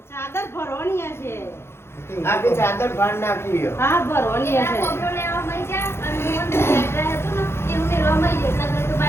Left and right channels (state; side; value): late; right; 0.12 ms